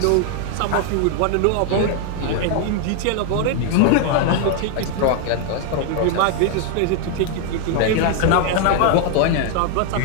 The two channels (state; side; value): different; both; correlation 0.00